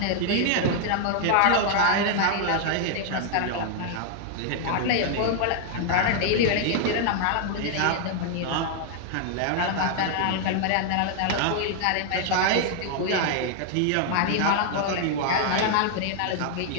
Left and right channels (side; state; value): both; different; correlation 0.00